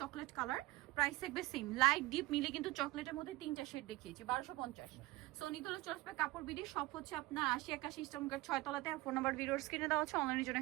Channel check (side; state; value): left; quieter; 19.7 dB